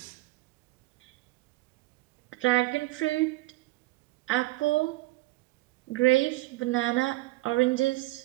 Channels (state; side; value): quieter; left; 20.4 dB